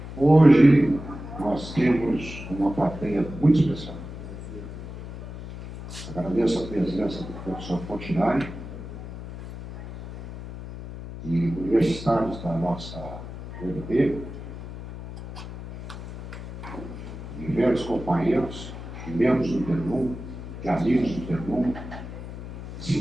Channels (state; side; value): noise; left; hum, 11 dB below the sound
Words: Hoje nós temos uma plateia muito especial. Agradeço a presença do professor Fontinari e universitários da nossa UNB, de velhos companheiros, de membros do Ternuma, de amigos do Ternuma,